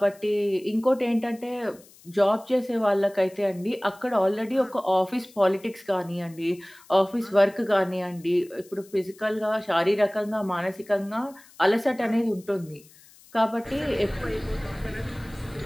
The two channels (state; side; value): noise; left; hiss, 25 dB below the sound